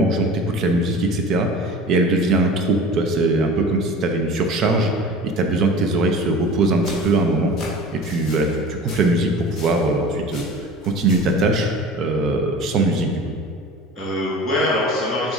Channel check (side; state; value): both; normal; correlation 0.39